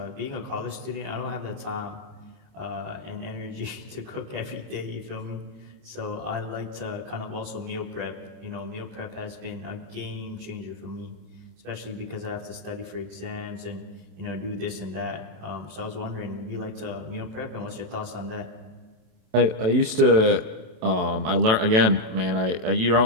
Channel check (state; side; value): late; left; 27 ms